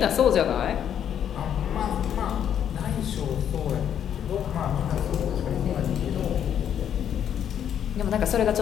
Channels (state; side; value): quieter; right; 9.3 dB